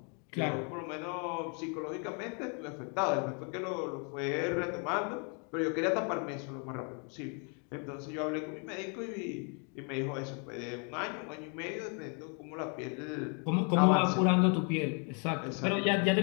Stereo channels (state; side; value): quieter; right; 37.8 dB